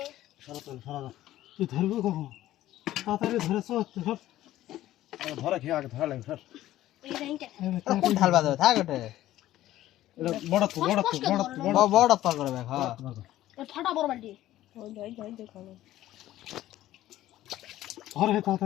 তুই ধরবি কখন তাড়াতাড়ি ধরে চল সব ধরে খেয়ে আগে ধরা লাগে ধর কোন ঢাল বাজে থাক ওটা এটা বড় তো বড় পা করবে হ্যাঁ ফাটা বড় বালতি ধরে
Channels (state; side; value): quieter; right; 14.3 dB